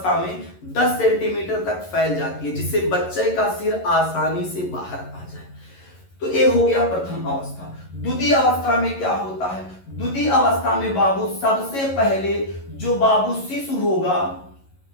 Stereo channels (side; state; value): right; late; 11 ms